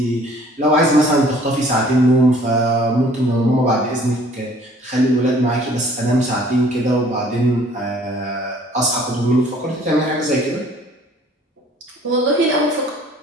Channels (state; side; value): normal; both; correlation 0.55